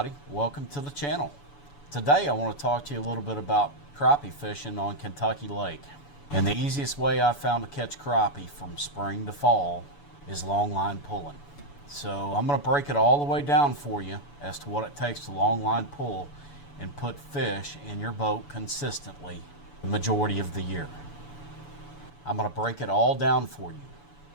welcome to the channel. Today I want to talk to you a little bit about crappie fishing on Kentucky Lake. And the easiest way I've found to catch crappie from spring to fall is long line pulling. So I'm going to break it all the way down for you as to what it takes to long line pull and put fish in your boat consistently the majority of the year. I'm going to break it all down for you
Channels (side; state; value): right; late; 7.0 ms